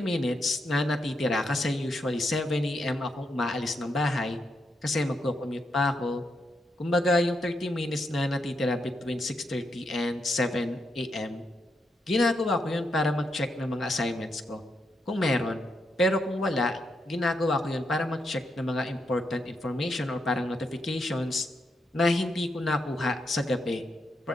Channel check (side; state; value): both; normal; correlation 0.82